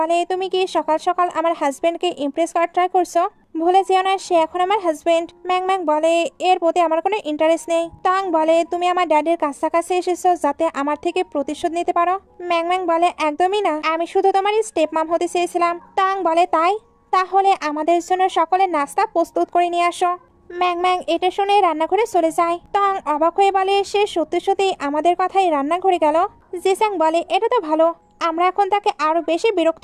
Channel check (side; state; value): both; identical; correlation 1.00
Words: তুমি কি সকাল সকাল আমার হাজবেন্ডকে ইমপ্রেস করার ট্রাই করছো? ভুলে যেও না, সে এখন আমার হাজবেন্ড। ম্যাংম্যাং বলে, এর প্রতি আমার কোনো ইন্টারেস্ট নেই। তং বলে, তুমি আমার ড্যাডির কাছাকাছি এসেছো যাতে আমার থেকে প্রতিশোধ নিতে পারো। ম্যাংম্যাং বলে, একদমই না, আমি শুধু তোমার স্টেপ মাম হতে চেয়েছিলাম। তং বলে, তাই? তাহলে আমাদের জন্য সকলের নাস্তা প্রস্তুত করে নিয়ে আসো। ম্যাংম্যাং এটা শুনে রান্নাঘরে চলে যায়। তং অবাক হয়ে বলে, সে সত্যি সত্যি আমাদের কথাই রান্নাঘরে গেল। জিসাং বলে, এটা তো ভালো, আমরা এখন তাকে আরো বেশি